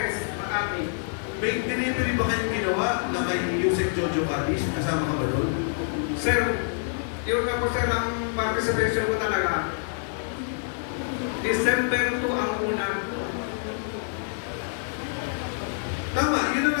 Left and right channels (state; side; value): silent; right; digital silence